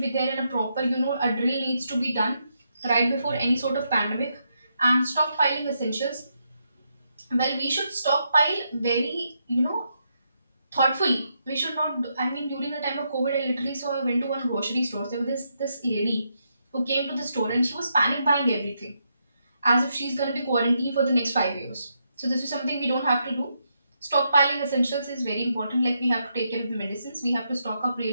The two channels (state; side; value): inverted; both; correlation -0.80